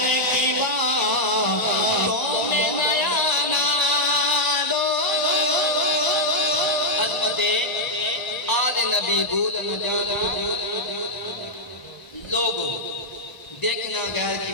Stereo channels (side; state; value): right; late; 1.0 ms